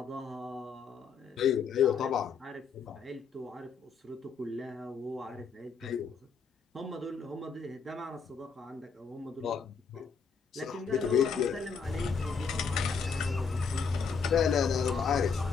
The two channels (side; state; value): right; quieter; 5.6 dB